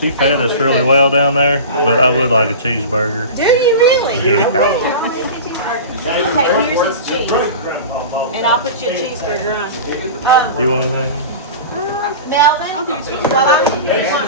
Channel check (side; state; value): both; inverted; correlation -0.32